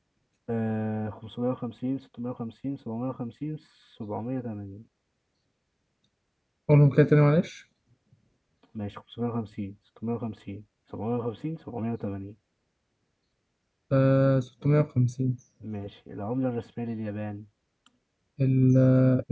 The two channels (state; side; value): identical; both; correlation 1.00